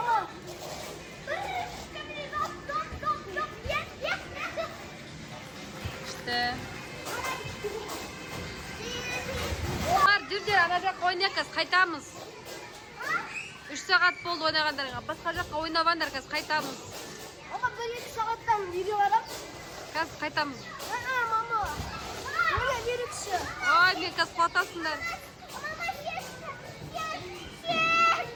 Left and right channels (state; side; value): identical; both; correlation 1.00